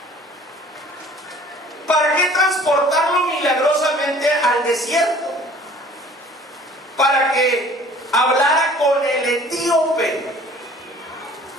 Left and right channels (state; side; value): normal; both; correlation 0.50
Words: ¿Para qué transportarlo milagrosamente al desierto? Para que hablara con el etíope.